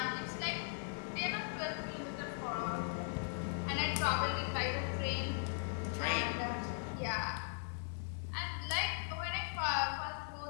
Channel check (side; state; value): right; silent; digital silence